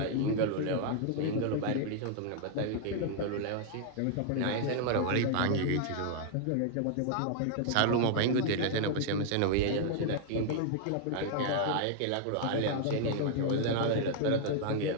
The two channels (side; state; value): both; different; correlation -0.01